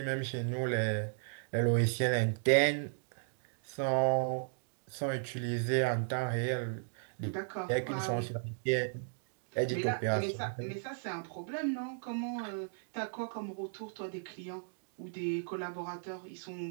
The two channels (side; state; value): left; silent; digital silence